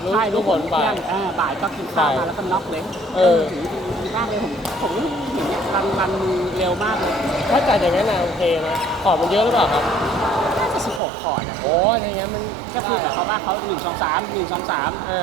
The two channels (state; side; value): drops out; left; at 11.0 s